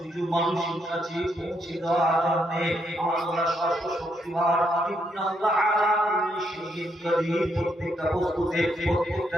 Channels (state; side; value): normal; both; correlation 0.76